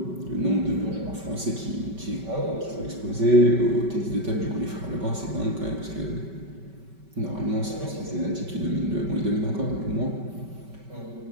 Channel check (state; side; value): late; left; 5.2 ms